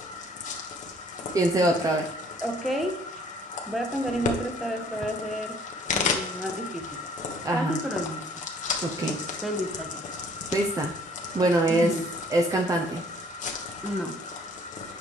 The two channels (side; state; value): both; normal; correlation 0.58